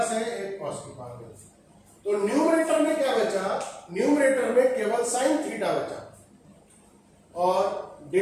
से एक cos की पावर कैंसिल। तो न्यूमरेटर में क्या बचा? न्यूमरेटर में केवल साइन थीटा बचा और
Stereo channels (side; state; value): both; identical; correlation 1.00